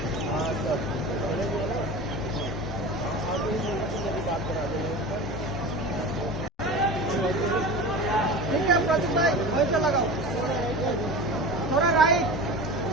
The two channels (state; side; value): normal; both; correlation 0.32